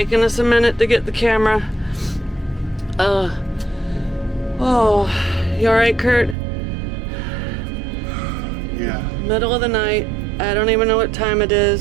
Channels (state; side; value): drops out; left; at 6.4 s